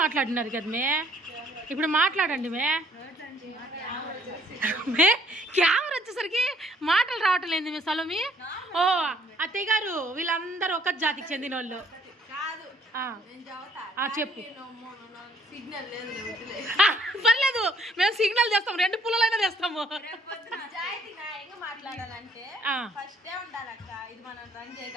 మాట్లాడినారు కదా ఇప్పుడు మాట్లాడండి కెమెరా వచ్చేసరికి మాటలు రావటం లేదు మీ సలోమి. ఓ అత్తయ్య గారు వీళ్ళందరూ ఒక జాతికి చెందిన వాళ్ళు. చెప్పు. పర్లేదు మేము సిగ్నల్ చేస్తాం, 2 పుల్లలైనా తెస్తాము. మాట్లాడాలంటే ఫస్ట్ ఉండాలక్క, ఇది మనం రన్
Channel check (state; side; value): normal; both; correlation 0.62